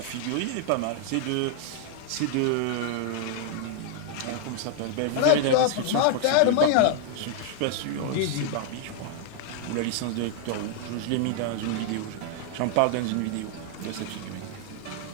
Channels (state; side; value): different; both; correlation 0.00